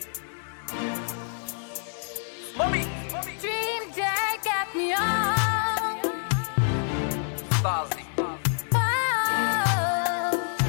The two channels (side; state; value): right; silent; 60 dB below the other